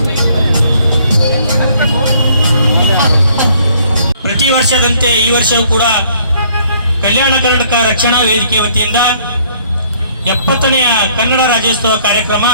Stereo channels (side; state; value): both; inverted; correlation -0.62